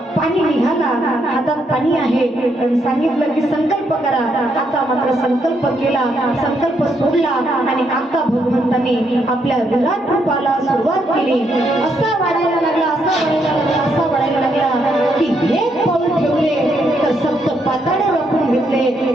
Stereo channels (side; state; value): both; normal; correlation 0.76